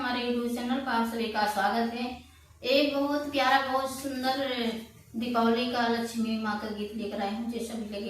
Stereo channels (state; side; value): identical; both; correlation 1.00